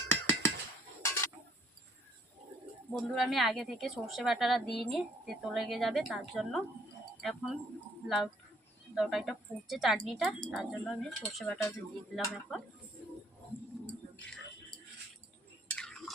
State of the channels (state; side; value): normal; both; correlation 0.63